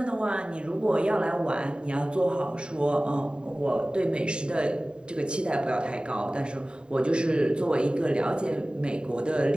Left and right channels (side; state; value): left; late; 0.050 ms